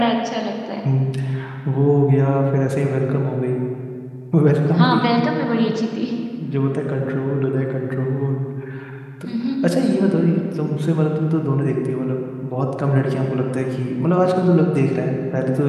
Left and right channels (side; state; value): both; identical; correlation 1.00